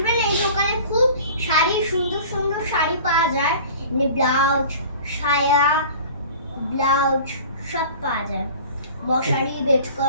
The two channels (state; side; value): inverted; both; correlation -0.42